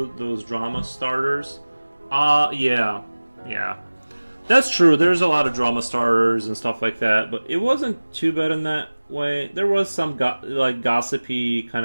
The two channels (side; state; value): both; inverted; correlation -1.00